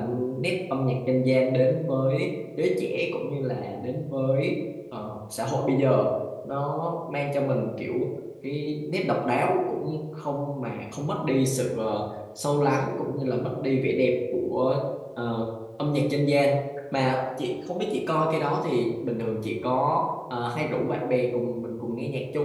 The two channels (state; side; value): identical; both; correlation 1.00